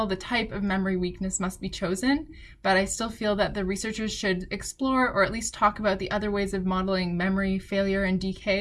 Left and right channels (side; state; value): both; identical; correlation 1.00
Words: the type of memory weakness must be chosen, but I still feel that the researchers should explore or at least talk about the other ways of modeling memory failure and